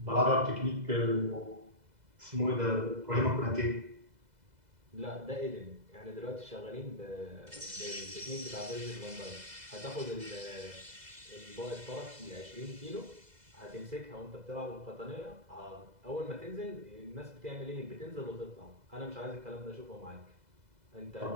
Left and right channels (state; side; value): late; left; 2.0 ms